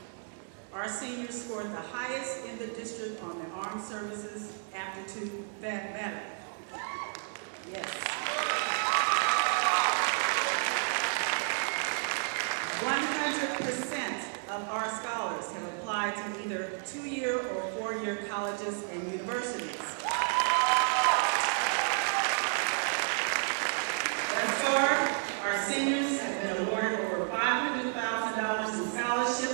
Our seniors scored the highest in the district on the Armed Services Aptitude Metric. Yes. 100% of our scholars have applied to either 2-year or 4-year colleges and universities. Thus far, our seniors have been awarded over $500,000 in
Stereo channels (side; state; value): left; silent; 57 dB below the other